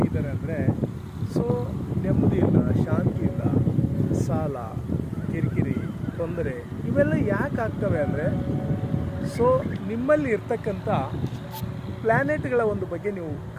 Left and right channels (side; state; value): both; identical; correlation 1.00